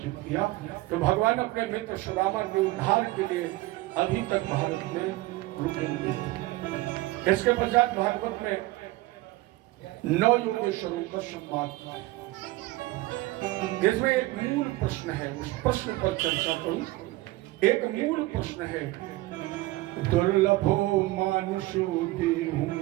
किया। तो भगवान अपने मित्र सुदामा के उद्धार के लिए अभी तक भारत में रुके हुए हैं। इसके पश्चात भागवत में 9 योगेश्वरों का संवाद, इसमें एक मूल प्रश्न है, उस प्रश्न पर चर्चा करूं। एक मूल प्रश्न है, दुर्लभो मानुषो देहु,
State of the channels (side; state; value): left; quieter; 19.3 dB